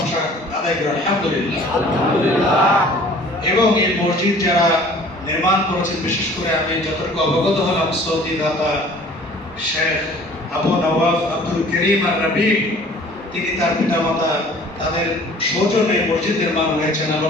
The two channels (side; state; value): both; normal; correlation 0.50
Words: আদায় করি আলহামদুলিল্লাহ। এবং এই মসজিদ যারা নির্মাণ করেছেন, বিশেষ করে আমি যতটুকু অবগত হলাম, সৌদি দাতা শেখ আবু নওয়াফ আব্দুল করিম আর রবি, তিনি তার পিতামাতা, তাদের সৌজন্যে মসজিদ নির্মাণ হয়েছেন। আল্লাহ